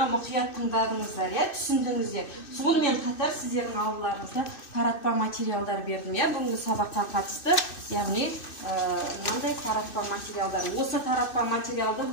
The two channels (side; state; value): right; late; 2.6 ms